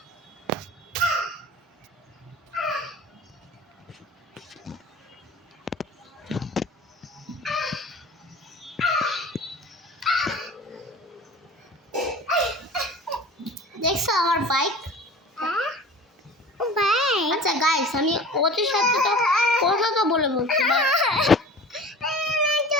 দেখছো আমার বাইক? আচ্ছা গাইস, আমি ওদের সাথে তো কথা তো বলে বলছি,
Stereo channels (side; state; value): both; normal; correlation 0.40